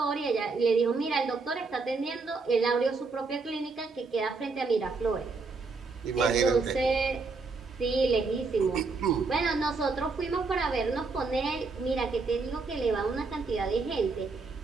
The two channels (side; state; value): left; quieter; 4.1 dB